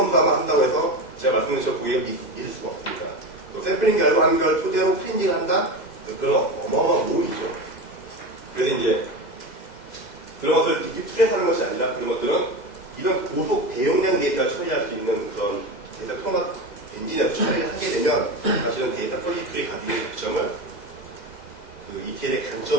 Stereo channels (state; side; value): late; right; 2.0 ms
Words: 한다고 해서 제가 말씀드린 것처럼 고객을 믿을 수가 없습니다. 또 샘플링 결과한 걸 토대로 클리닝을 한다? 그런 어마어마한 모험이죠. 그래서 이제 그런 것을 DQ2에서 하는 것이 아니라 그런 것들은 이런 고속 대용량 데이터를 처리할 수 있는 그런 데이터 통합 엔진에서 처리를 하게 되면 사실은 데이터 퀄리티의 가지고 있는 장점을 그 ETL의